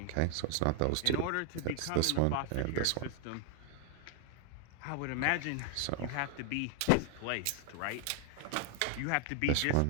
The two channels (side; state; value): both; different; correlation 0.00